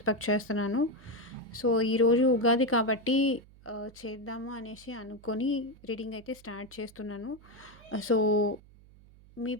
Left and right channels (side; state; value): right; noise; hum, 24 dB below the sound